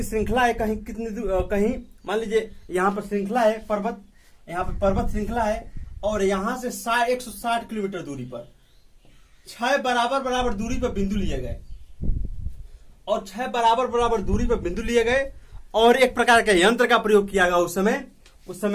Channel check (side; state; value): both; identical; correlation 1.00